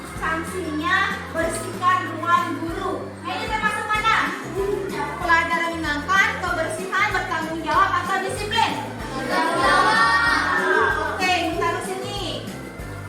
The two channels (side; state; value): both; identical; correlation 1.00